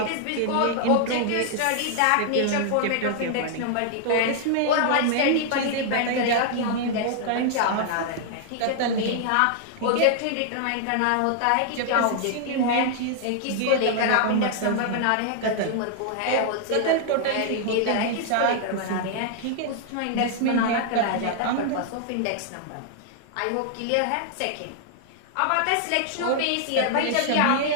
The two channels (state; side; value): different; both; correlation -0.01